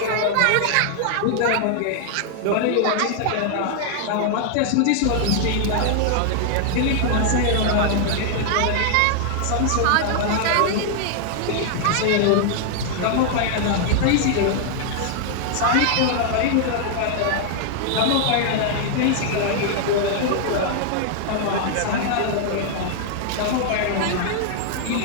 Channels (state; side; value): different; both; correlation 0.00